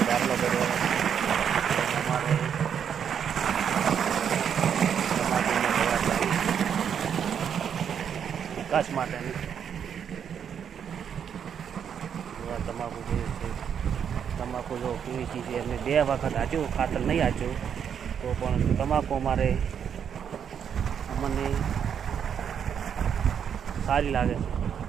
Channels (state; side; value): quieter; left; 8.0 dB